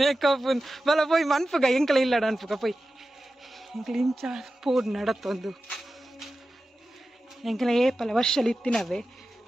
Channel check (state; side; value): normal; both; correlation 0.93